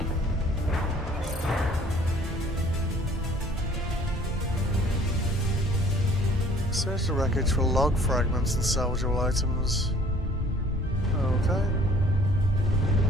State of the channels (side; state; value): both; normal; correlation 0.54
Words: Search the wreckage for log fragments and salvageable items. Okay.